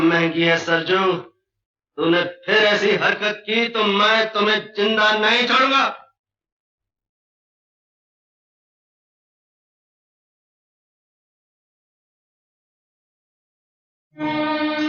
है सरजू। तूने फिर ऐसी हरकत की तो मैं तुम्हें जिंदा नहीं छोड़ूंगा।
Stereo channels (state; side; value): identical; both; correlation 1.00